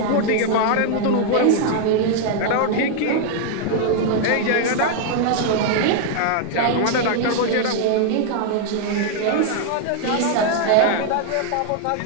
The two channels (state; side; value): different; both; correlation 0.00